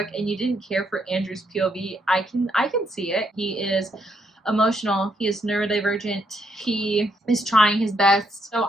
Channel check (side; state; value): both; normal; correlation 0.75